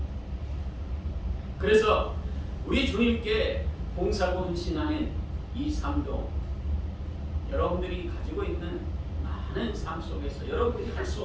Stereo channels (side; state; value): both; identical; correlation 1.00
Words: 그래서 우리 주님께 봉사하고 헌신하는 이 삶도 여러분들이 가지고 있는 많은 삶 속에서 여러분들이 할